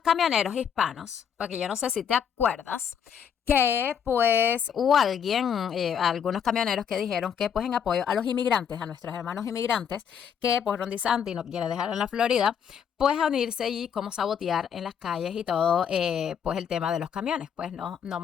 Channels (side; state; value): right; quieter; 7.9 dB